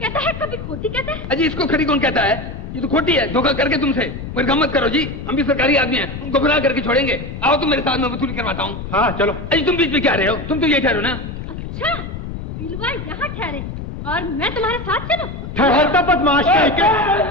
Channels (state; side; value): noise; left; rumble, 8 dB below the sound